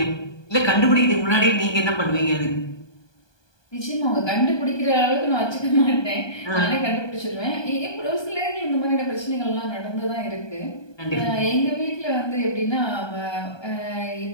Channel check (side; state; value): right; late; 1.2 ms